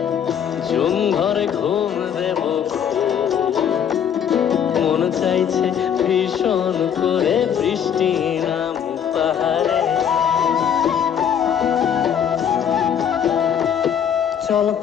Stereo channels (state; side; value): quieter; right; 8.5 dB